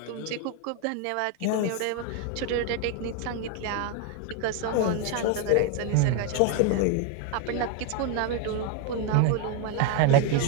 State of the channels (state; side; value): different; both; correlation 0.01